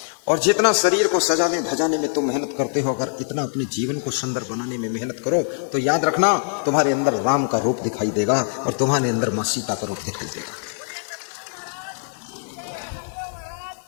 और जितना शरीर को सजाने धजाने में तुम मेहनत करते हो, अगर इतना अपने जीवन को सुंदर बनाने में मेहनत करो तो याद रखना तुम्हारे अंदर राम का रूप दिखाई देगा और तुम्हारे अंदर माँ सीता का रूप दिखाई देगा।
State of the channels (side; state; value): right; silent; digital silence